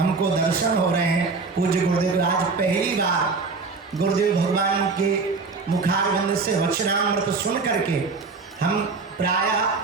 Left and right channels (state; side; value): quieter; left; 4.3 dB